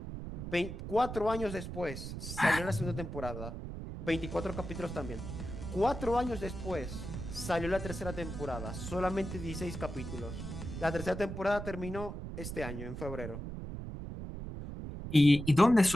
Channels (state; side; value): noise; right; rumble, 7 dB below the sound